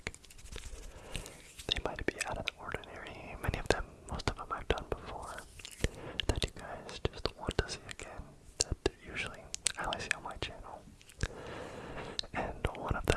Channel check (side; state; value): both; identical; correlation 1.00